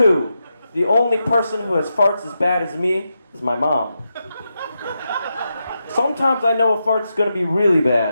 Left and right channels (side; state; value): both; inverted; correlation -0.87